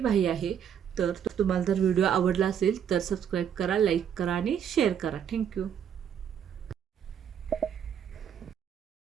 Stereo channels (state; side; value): quieter; left; 8.6 dB